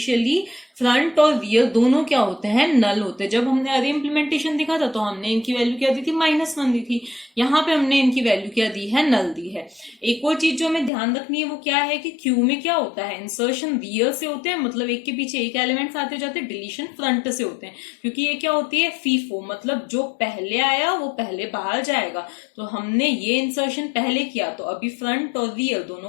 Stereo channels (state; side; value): drops out; right; at 10.9 s